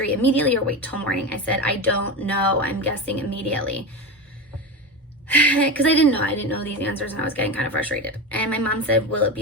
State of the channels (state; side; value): normal; both; correlation 0.21